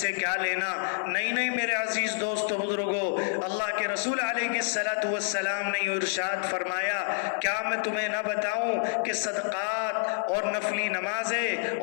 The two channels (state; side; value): silent; right; 59 dB below the other